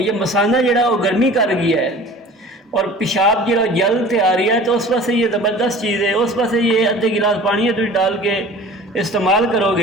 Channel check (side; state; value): both; normal; correlation 0.43